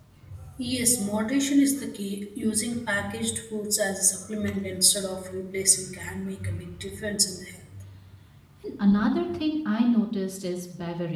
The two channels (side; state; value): both; identical; correlation 1.00